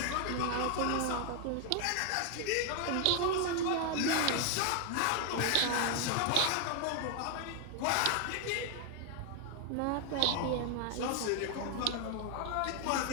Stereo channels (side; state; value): both; different; correlation 0.00